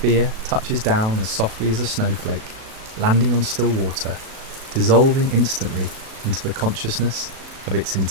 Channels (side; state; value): left; late; 37 ms